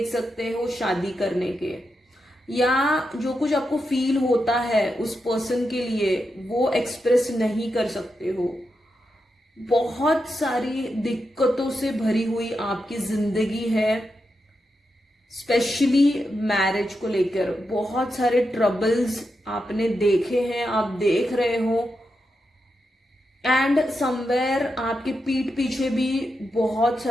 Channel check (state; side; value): normal; both; correlation 0.86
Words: सकते हो शादी करने के, या जो कुछ आपको फील होता है उस पर्सन के लिए वो एक्सप्रेस नहीं कर सकते हो। बहुत सारी दिक्कतों से भरी हुई आपकी जिंदगी है, स्पेशली मैरिज को लेकर बहुत सारे ट्रबल्स आपने देखे हैं, आप देख रहे हो। एंड समवेयर आपके पीठ पीछे भी बहुत